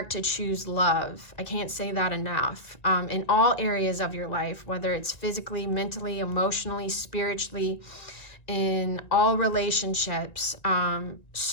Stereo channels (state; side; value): late; right; 1.9 ms